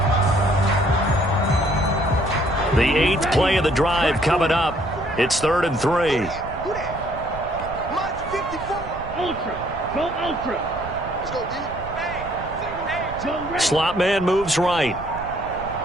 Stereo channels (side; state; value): right; noise; rumble, 13 dB below the sound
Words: The 8th play of the drive coming up. It's 3rd and 3. Ultra. Go ultra. Let's go, D. Slot man moves right.